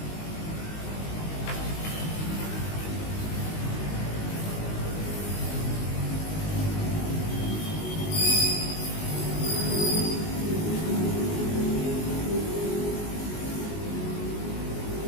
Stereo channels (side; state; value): right; late; 19 ms